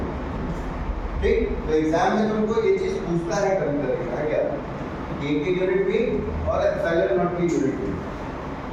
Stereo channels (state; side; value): identical; both; correlation 1.00